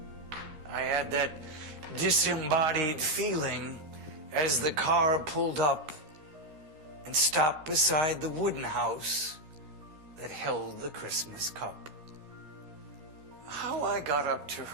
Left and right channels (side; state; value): left; late; 13 ms